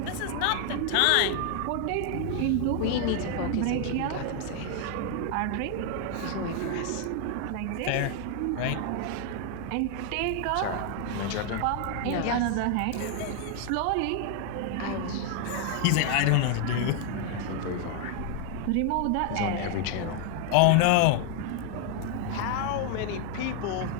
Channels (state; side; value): different; both; correlation 0.00